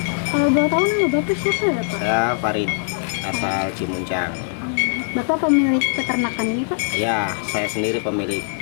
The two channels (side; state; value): right; silent; digital silence